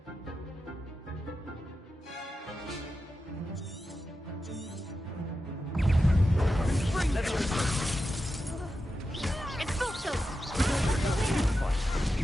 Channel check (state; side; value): normal; both; correlation 0.90